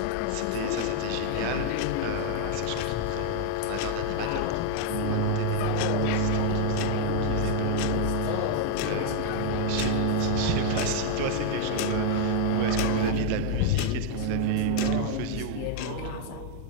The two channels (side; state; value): both; different; correlation 0.00